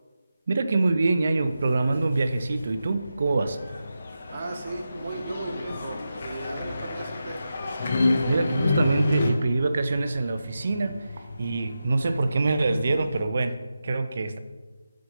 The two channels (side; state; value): both; inverted; correlation -0.90